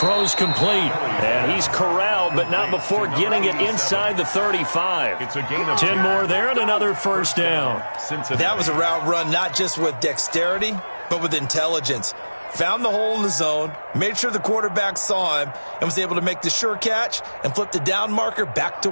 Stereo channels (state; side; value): inverted; both; correlation -1.00